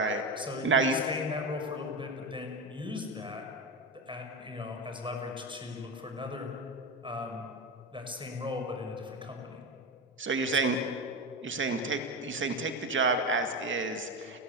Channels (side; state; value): both; normal; correlation 0.18